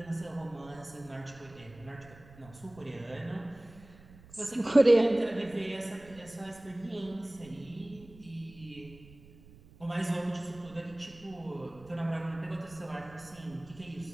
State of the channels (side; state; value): right; noise; rumble, 21 dB below the sound